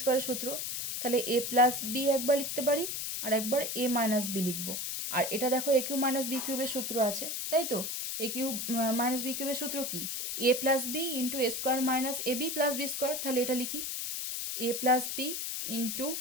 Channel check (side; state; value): left; noise; hiss, 3 dB below the sound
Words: স্কোয়ারের সূত্র, তাহলে a প্লাস বি একবার লিখতে পারি আর একবার a মাইনাস বি লিখবো। আর এটা দেখো a কিউব মাইনাস বি কিউবের সূত্র আছে, তাই তো? a কিউব মাইনাস বি কিউবের সূত্র কি, a plus B into a square minus ab plus B square. তাহলে এটা লিখি a plus B into